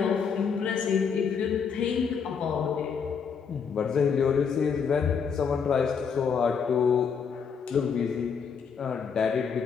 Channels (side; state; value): right; quieter; 6.4 dB